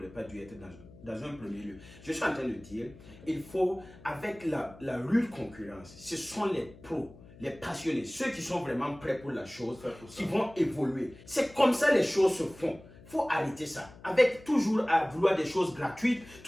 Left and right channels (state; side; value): noise; left; hum, 21 dB below the sound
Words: pas dû être dans un premier lieu. Je suis en train de dire, il faut, avec la rude concurrence, ce sont les pros, les passionnés, ceux qui sont vraiment prêts pour la chose, qui vont évoluer. C'est comme ça les choses se font. Il faut arrêter ça. Avec toujours à vouloir des choses gratuites,